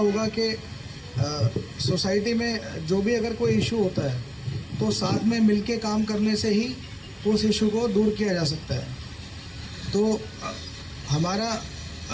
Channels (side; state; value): both; identical; correlation 1.00